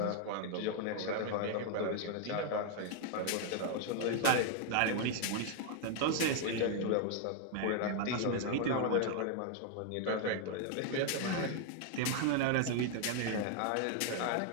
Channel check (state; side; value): different; both; correlation 0.00